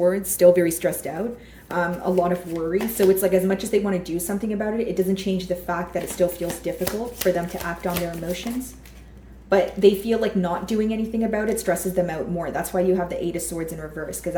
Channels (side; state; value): both; identical; correlation 1.00